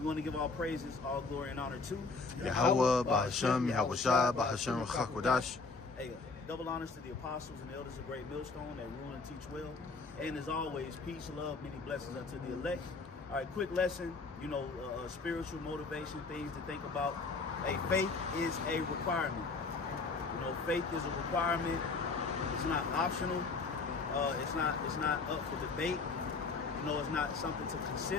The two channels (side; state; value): right; quieter; 4.1 dB